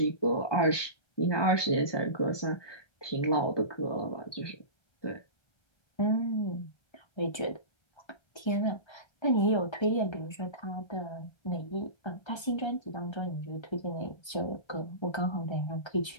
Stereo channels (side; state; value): right; late; 1.2 ms